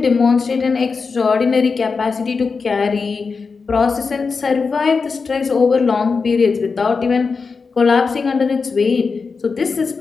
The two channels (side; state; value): right; quieter; 4.8 dB